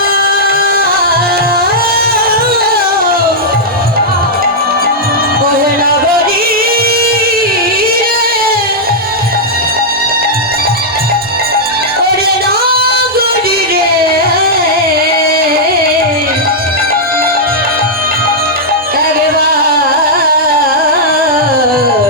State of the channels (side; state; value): both; normal; correlation -0.07